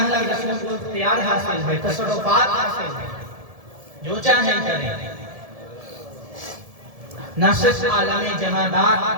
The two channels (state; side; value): late; left; 1.7 ms